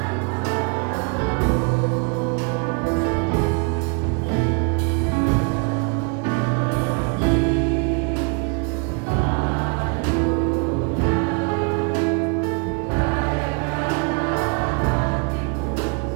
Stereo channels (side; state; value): left; quieter; 34.4 dB